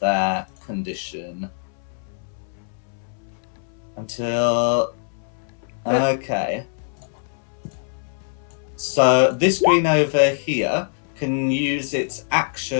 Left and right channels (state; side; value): silent; right; 63 dB below the other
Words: condition? Okay. So this green over here can use its